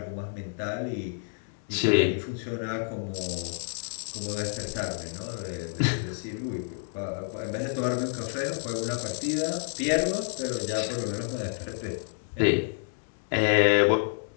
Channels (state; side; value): silent; right; 59 dB below the other